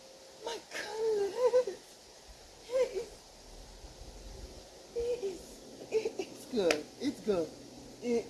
my goodness. It's good. It's good. It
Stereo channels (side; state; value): both; identical; correlation 1.00